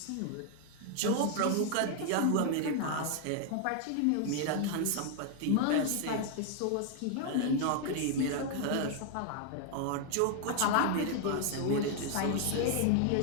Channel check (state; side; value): different; both; correlation 0.00